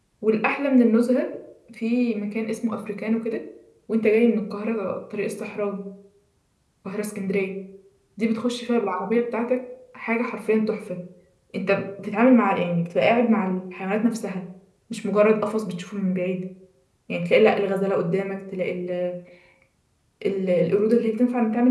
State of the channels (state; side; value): identical; both; correlation 1.00